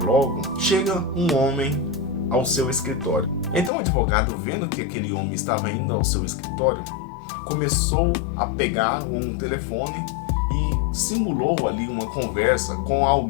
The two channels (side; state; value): right; drops out; at 3.7 s